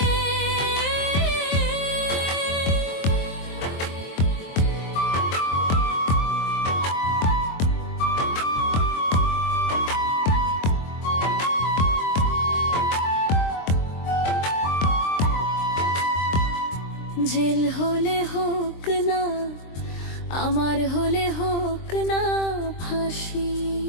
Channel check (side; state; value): right; late; 23 ms